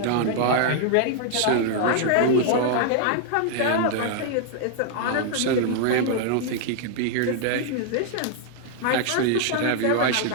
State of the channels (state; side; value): different; both; correlation 0.00